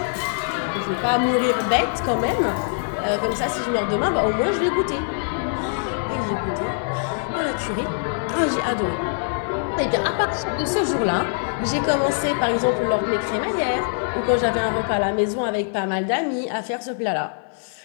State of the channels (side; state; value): right; silent; 56 dB below the other